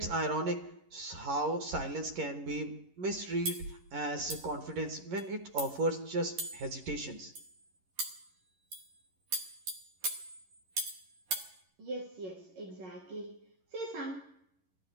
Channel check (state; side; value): late; left; 11 ms